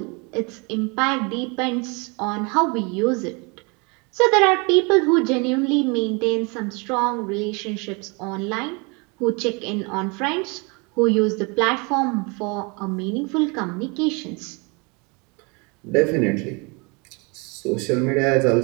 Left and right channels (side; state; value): left; quieter; 30.4 dB